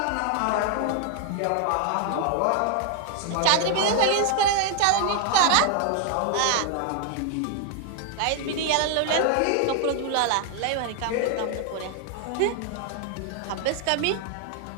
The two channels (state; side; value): different; both; correlation 0.00